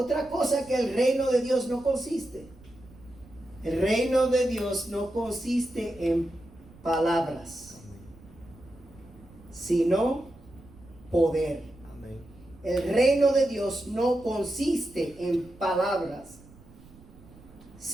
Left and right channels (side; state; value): right; noise; rumble, 23 dB below the sound